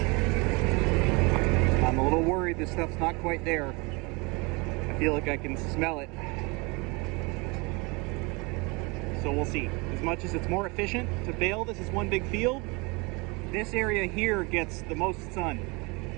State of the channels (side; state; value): left; quieter; 27.5 dB